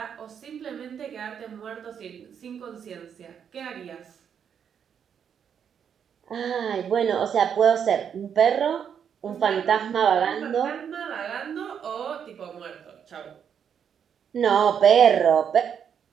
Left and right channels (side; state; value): left; quieter; 7.9 dB